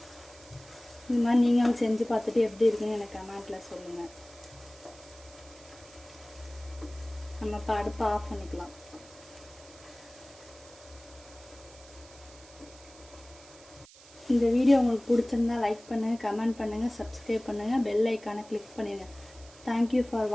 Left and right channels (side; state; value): right; noise; hiss, 22 dB below the sound